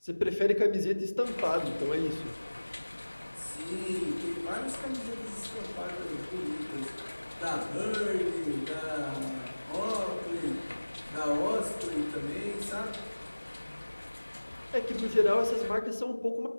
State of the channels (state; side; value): inverted; both; correlation -1.00